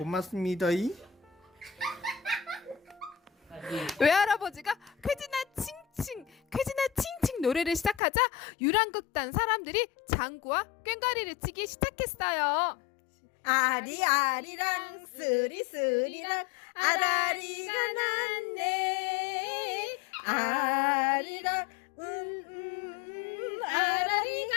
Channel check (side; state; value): right; drops out; at 8.0 s